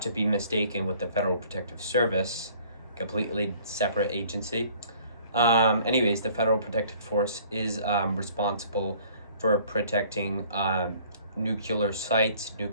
to be mistaken with the Federal Protective Service, completely separate agency. The Federal Protective Force is responsible for protecting nuclear sites,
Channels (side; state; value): both; inverted; correlation -0.55